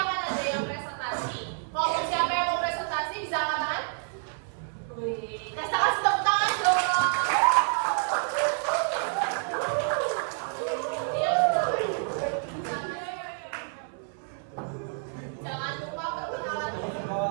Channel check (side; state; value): left; silent; 59 dB below the other